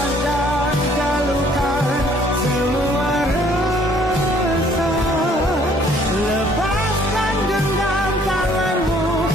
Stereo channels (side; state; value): both; normal; correlation 0.60